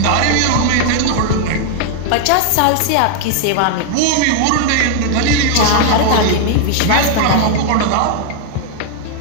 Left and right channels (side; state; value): both; different; correlation 0.00